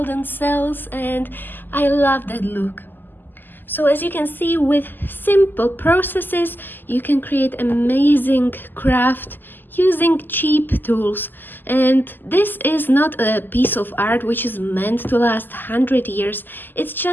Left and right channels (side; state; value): right; late; 0.090 ms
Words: cells, and I love that look. So as you can see, with simple processes, you can create amazing craft using cheap tools. And this is not a piece of art which is meant to last 100 years. It's